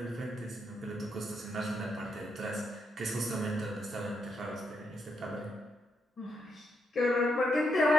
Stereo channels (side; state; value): both; normal; correlation 0.80